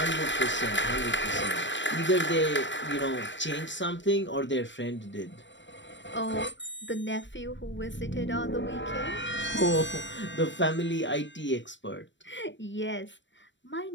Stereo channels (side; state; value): right; late; 0.53 ms